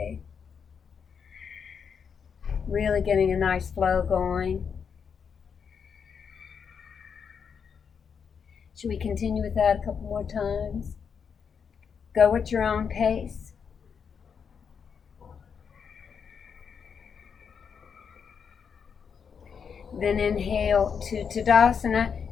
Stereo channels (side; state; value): right; quieter; 6.7 dB